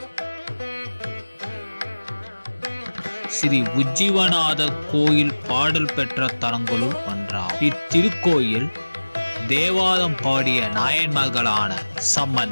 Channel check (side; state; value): both; inverted; correlation -1.00